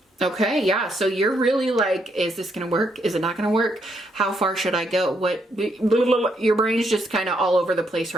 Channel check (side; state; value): both; normal; correlation 0.75